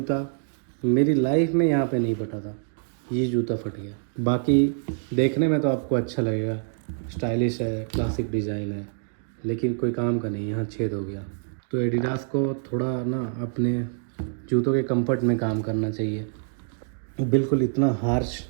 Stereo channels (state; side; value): silent; left; digital silence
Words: मेरी लाइफ में यहाँ पे नहीं फटा था, ये जूता फट गया। बाकी देखने में तो आपको अच्छा लगेगा, स्टाइलिश है, क्लासिक डिज़ाइन है, लेकिन कोई काम का नहीं, यहाँ छेद हो गया। तो एडिडास को थोड़ा ना अपने जूतों के कंफर्ट में काम करना चाहिए। बिल्कुल इतना हार्श